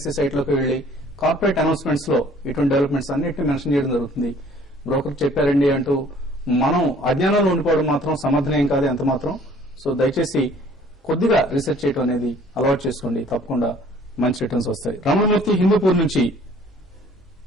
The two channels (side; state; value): both; normal; correlation 0.55